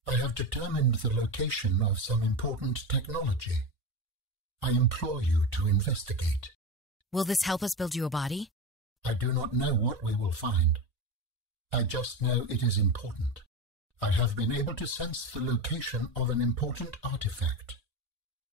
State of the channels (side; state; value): both; normal; correlation 0.21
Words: I have determined the location of some important technology. I implore you to investigate. Will this help us build you a body? I do not know what we will find. I just know it is important. I have been able to sense the location of an important artifact.